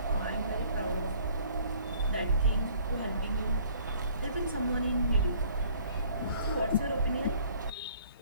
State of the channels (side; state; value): both; inverted; correlation -0.56